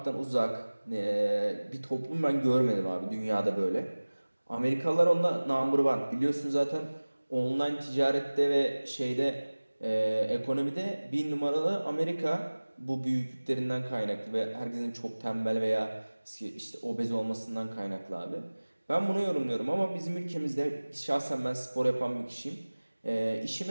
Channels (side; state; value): both; inverted; correlation -1.00